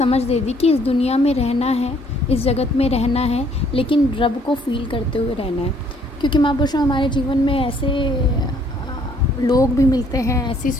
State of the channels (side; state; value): both; normal; correlation 0.63